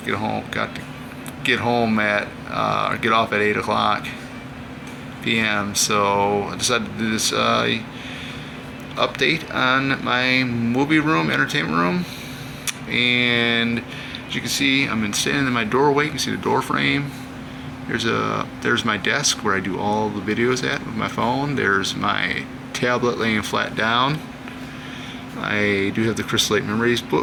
get home at get off at 8 o'clock p.m. So I decided to do this update on my movie room, entertainment room. And as you can see, I'm standing in my doorway. You can see the door frame. There's my desk where I do all the videos at with my phone. There's my tablet laying flat down. I do have the Crystal Lake Memories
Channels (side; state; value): both; identical; correlation 1.00